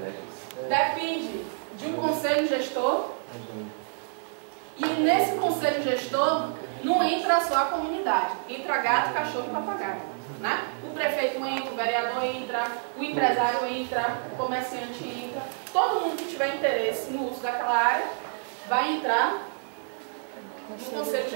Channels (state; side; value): silent; left; 59 dB below the other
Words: Depende de um conselho gestor. E nesse conselho gestor não entra só a comunidade, entra gato, cachorro e papagaio. Né? O prefeito entra, o vereador entra, o empresário entra, o comerciante entra. Todo mundo que tiver interesse no uso daquela área vai entrar no conselho